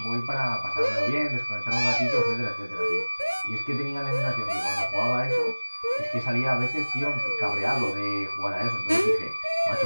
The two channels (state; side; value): inverted; both; correlation -1.00